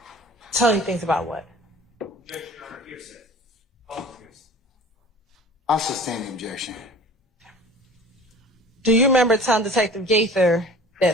Tell you things about what? I'll sustain the objection. Do you remember telling Detective Gaither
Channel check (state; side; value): normal; both; correlation 0.43